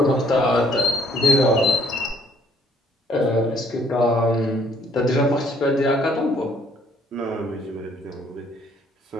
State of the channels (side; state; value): both; normal; correlation 0.62